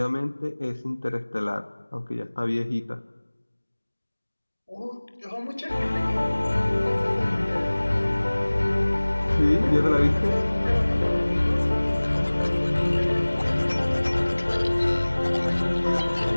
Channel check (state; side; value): inverted; both; correlation -1.00